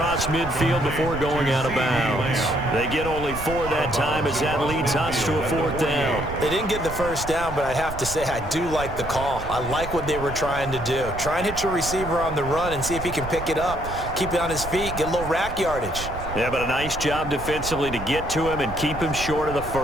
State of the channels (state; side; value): noise; right; rumble, 10 dB below the sound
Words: midfield before going out of bounds. They get only 4 that time as that leads us to a 4th down. They didn't get the first down, but I have to say I do like the call. I like what they were trying to do. Try and hit your receiver on the run and see if he can pick it up, keep it on his feet, get a little rack yardage. Yeah, but a nice job defensively to get to him and keep him short of the